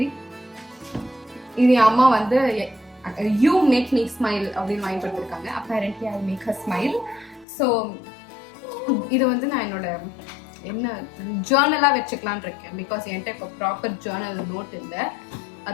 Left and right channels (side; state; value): right; drops out; at 7.5 s